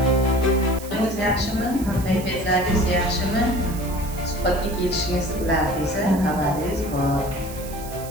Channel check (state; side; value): noise; right; hiss, 15 dB below the sound